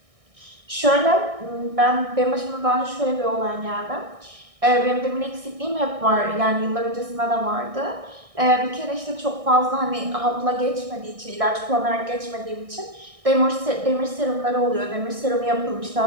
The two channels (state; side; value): late; left; 1.6 ms